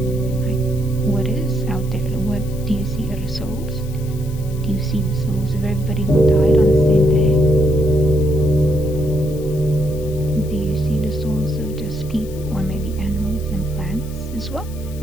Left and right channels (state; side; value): noise; left; hiss, 20 dB below the sound